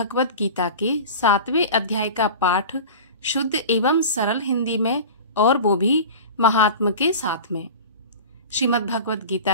गीता के 7वें अध्याय का पाठ शुद्ध एवं सरल हिंदी में, और वो भी महात्मा के साथ में। श्रीमद् भगवत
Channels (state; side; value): inverted; both; correlation -0.34